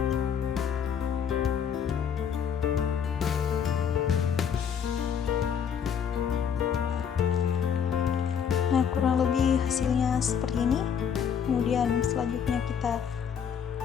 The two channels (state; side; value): quieter; right; 7.7 dB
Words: Nah, kurang lebih hasilnya seperti ini. Kemudian selanjutnya kita